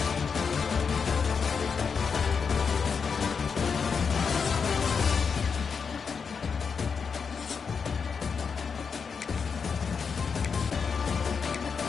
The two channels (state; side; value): quieter; right; 5.8 dB